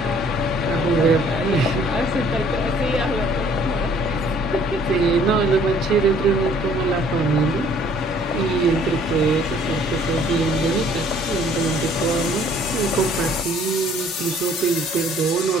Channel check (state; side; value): normal; both; correlation 0.58